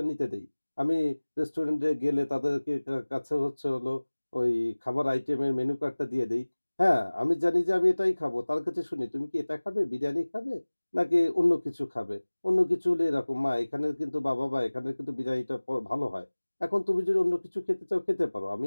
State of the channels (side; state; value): both; inverted; correlation -1.00